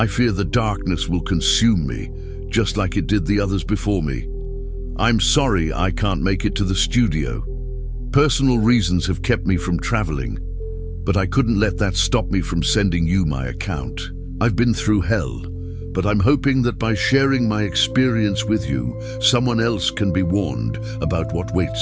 fear the darkness will consume me, just like it did the others before me. I'm sorry I can't make it to the studio. Personal reasons have kept me from traveling, but I couldn't let that stop me from sending you my account. I've been through hell, but I'm hoping that by sharing my experience with you, someone else can be warned about what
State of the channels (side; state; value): both; identical; correlation 1.00